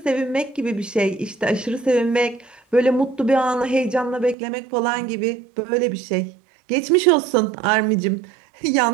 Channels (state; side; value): drops out; left; at 4.4 s